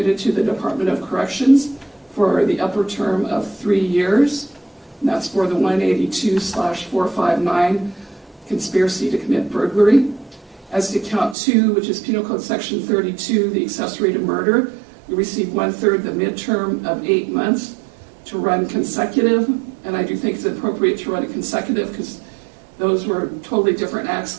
to the Department of Corrections for the upper term of 3 years. And that's for the 182/459 conspiracy to commit burglary. As to count 2, which is Penal Code Section 32, the accessory to murder, you receive 1/3 the midterm of 8 months to run consecutive. And I do think it's appropriate to run it consecutive because those were totally different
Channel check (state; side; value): drops out; left; at 11.4 s